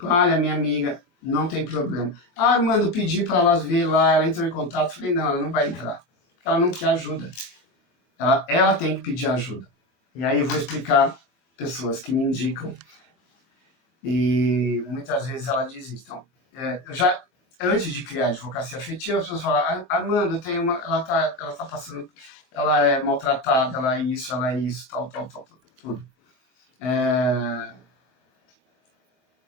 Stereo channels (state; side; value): late; right; 23 ms